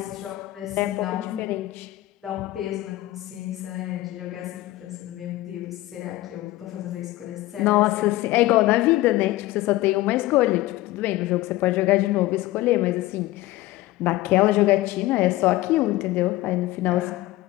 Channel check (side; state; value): right; quieter; 17.3 dB